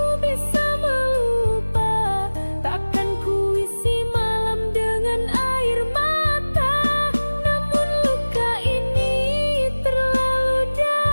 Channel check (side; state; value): both; inverted; correlation -1.00